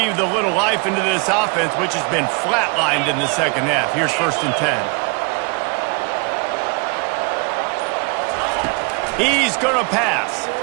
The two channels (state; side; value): quieter; left; 32.4 dB